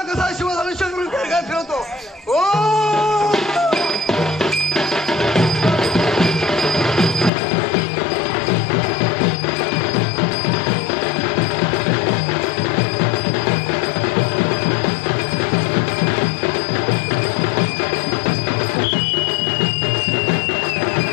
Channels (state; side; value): drops out; right; at 7.3 s